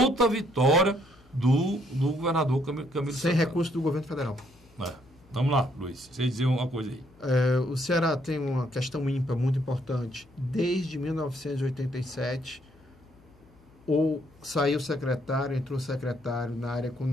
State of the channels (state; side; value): noise; left; hum, 28 dB below the sound